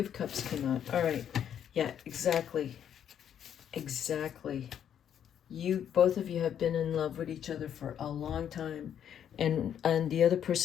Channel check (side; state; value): right; quieter; 9.3 dB